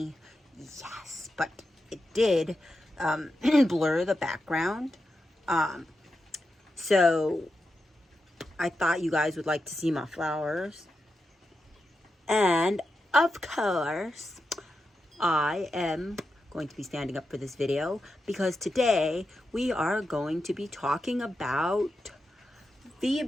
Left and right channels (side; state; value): both; normal; correlation 0.88